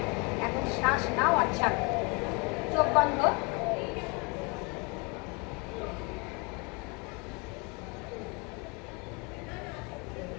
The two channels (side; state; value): right; quieter; 30.4 dB